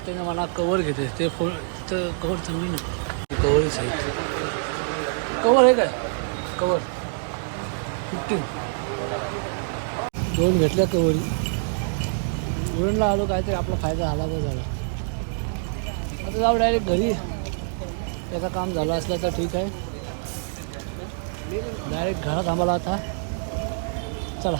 ना मला कवर घेते. ते फोन तिथं कवर चांगली नाही, कवरच आहे. कवर आहे काय, कवर 15 दोन घेतल्या कवरी. उरणला आलो, काहीतरी आपला फायदा झाला तर झाला. आता जाऊ डायरेक्ट घरी. त्याचं काम झालं असलं तर ठीक आहे. डायरेक्ट घरात थांबाला आता. चला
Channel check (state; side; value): silent; left; digital silence